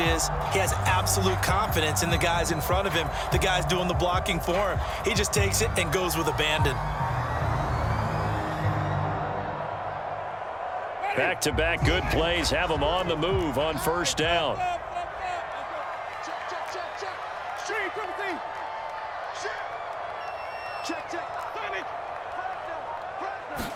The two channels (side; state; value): both; identical; correlation 1.00